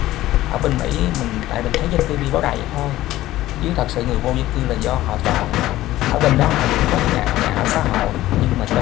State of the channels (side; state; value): right; quieter; 15.5 dB